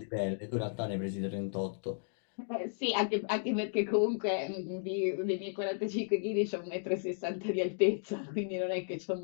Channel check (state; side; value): silent; right; digital silence